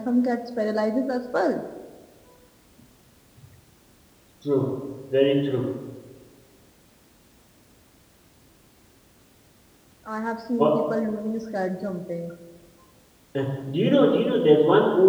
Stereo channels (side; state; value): both; identical; correlation 1.00